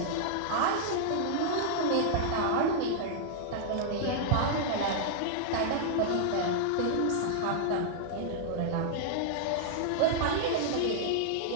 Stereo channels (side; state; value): both; different; correlation -0.01